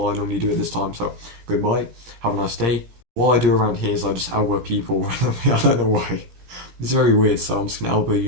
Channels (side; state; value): left; late; 16 ms